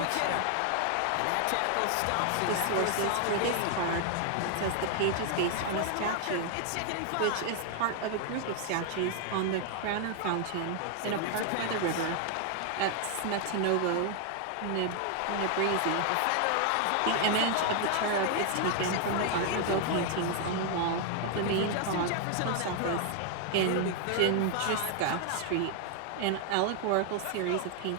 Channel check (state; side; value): different; both; correlation 0.00